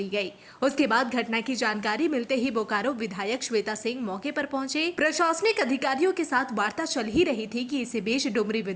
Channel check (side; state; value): both; identical; correlation 1.00